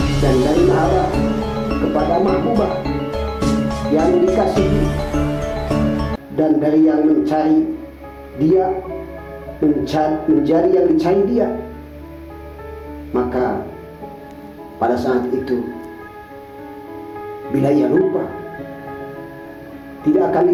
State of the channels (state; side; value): identical; both; correlation 1.00